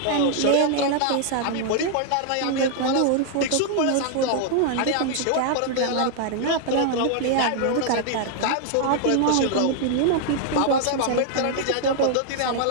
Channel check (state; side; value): different; both; correlation 0.00